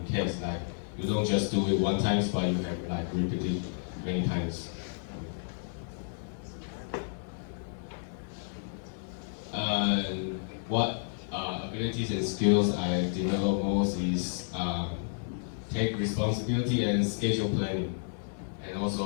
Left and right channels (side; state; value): right; silent; digital silence